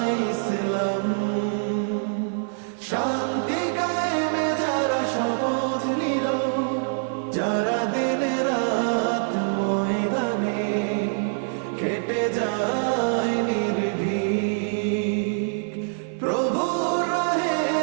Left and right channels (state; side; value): silent; left; 57 dB below the other